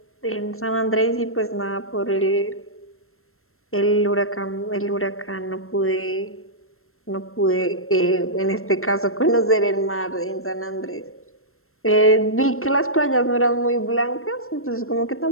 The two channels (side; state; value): right; late; 0.62 ms